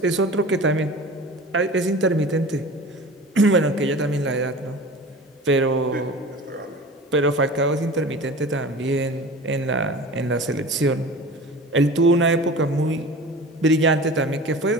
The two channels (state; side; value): normal; both; correlation 0.37